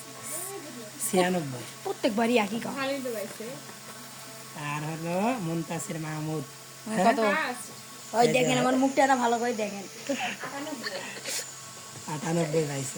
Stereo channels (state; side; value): identical; both; correlation 1.00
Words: 96। প্রত্যেকবারই একই কাজ। ভালোই তো পাইছে আর হলো মুনতাসির মাহমুদ কত? ওই দেখেন আমার মুখটা না ভালো করে দেখেন। 98